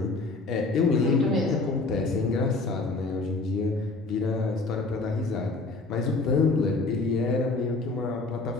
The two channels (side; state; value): right; quieter; 3.5 dB